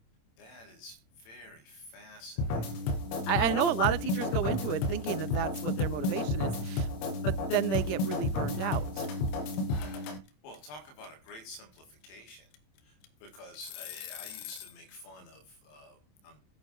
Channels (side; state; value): right; late; 27 ms